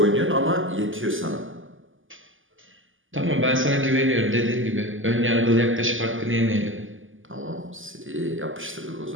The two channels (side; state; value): left; late; 0.58 ms